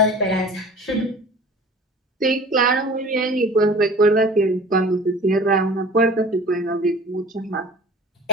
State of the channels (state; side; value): normal; both; correlation 0.42